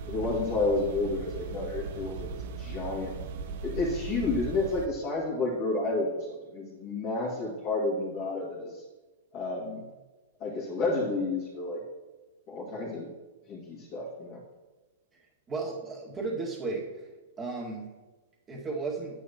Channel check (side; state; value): both; normal; correlation 0.18